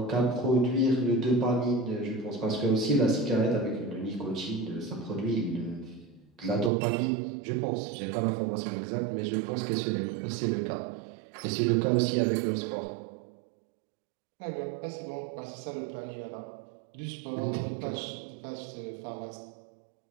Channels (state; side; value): drops out; left; at 6.7 s